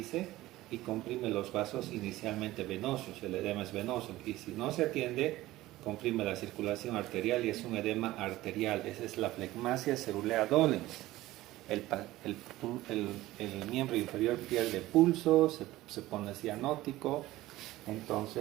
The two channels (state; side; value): quieter; left; 16.9 dB